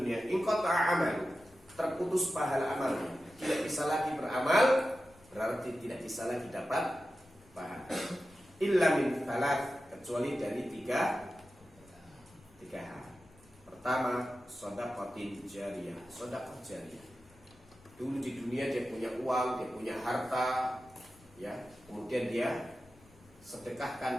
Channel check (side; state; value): left; noise; rumble, 26 dB below the sound